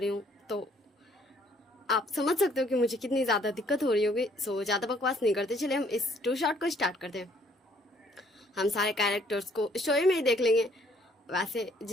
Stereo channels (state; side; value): normal; both; correlation 0.64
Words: हूँ। तो आप समझ सकते हो कि मुझे कितनी ज़्यादा दिक्कत हो रही होगी। सो ज़्यादा बकवास नहीं करते, चले हम इस टू शॉट को स्टार्ट करते हैं। हम सारे कैरेक्टर्स को स्टोरी में ही देख लेंगे। वैसे